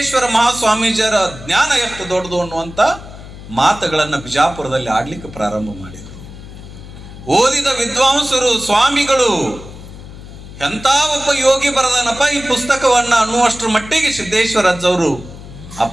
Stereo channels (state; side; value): noise; left; hum, 15 dB below the sound